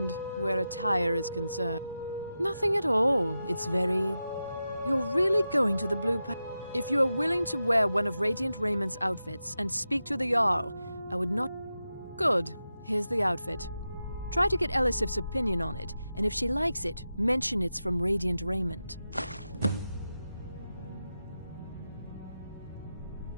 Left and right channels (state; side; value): inverted; both; correlation -0.91